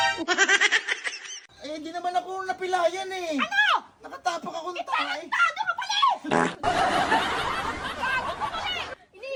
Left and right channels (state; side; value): identical; both; correlation 1.00